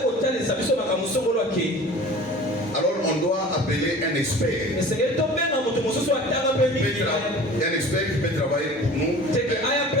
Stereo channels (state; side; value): normal; both; correlation 0.42